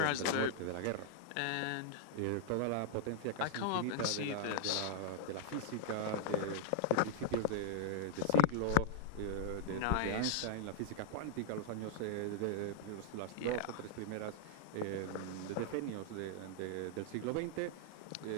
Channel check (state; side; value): different; both; correlation 0.00